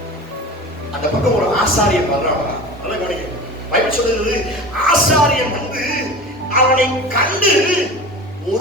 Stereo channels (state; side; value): normal; both; correlation 0.35